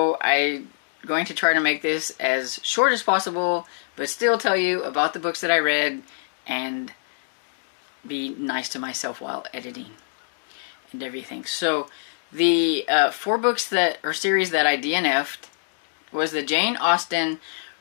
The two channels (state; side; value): silent; right; digital silence